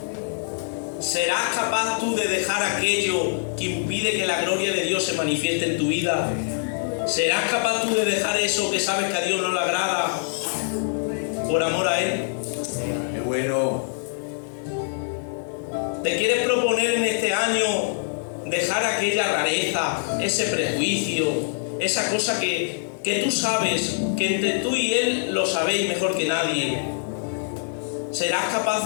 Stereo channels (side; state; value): right; silent; digital silence